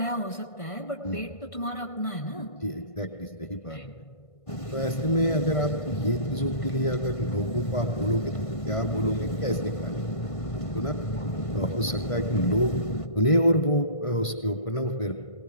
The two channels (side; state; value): right; late; 1.5 ms